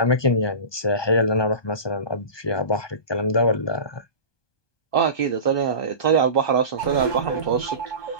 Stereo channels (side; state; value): right; late; 1.2 ms